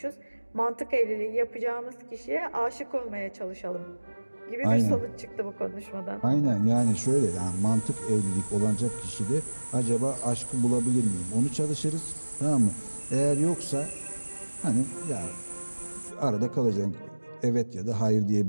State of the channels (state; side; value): inverted; both; correlation -1.00